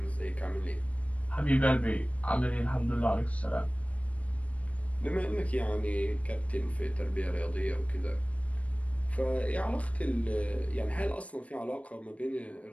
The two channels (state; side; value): late; right; 0.065 ms